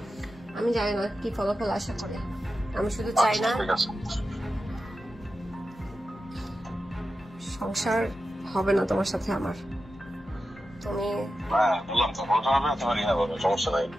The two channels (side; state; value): both; normal; correlation 0.91